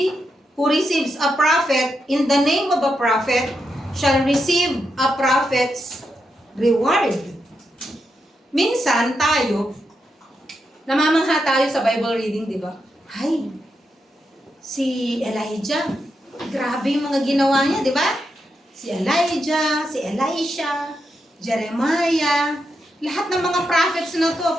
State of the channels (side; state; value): both; normal; correlation 0.84